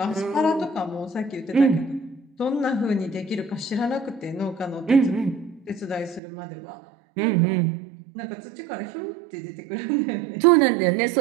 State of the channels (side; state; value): left; drops out; at 6.2 s